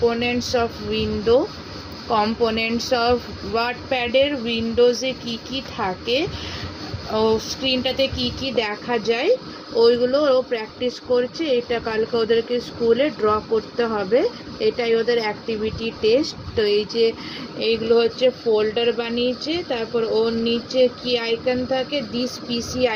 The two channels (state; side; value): identical; both; correlation 1.00